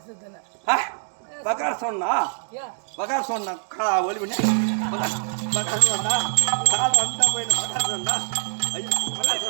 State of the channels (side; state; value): left; silent; digital silence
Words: பகார் சொன்னா பகார் சொன்னா ஒளி பண்ணி பகார் சொன்னா கால் வந்தா போயிடும். பகார் சொன்னா ஐயோ பகார்